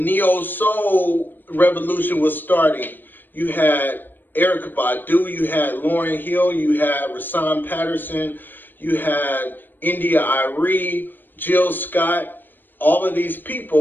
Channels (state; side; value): late; right; 0.092 ms